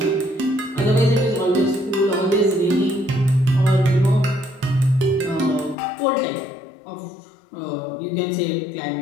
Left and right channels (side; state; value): right; drops out; at 5.8 s